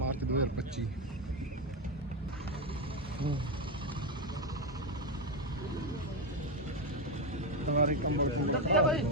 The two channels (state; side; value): normal; both; correlation 0.09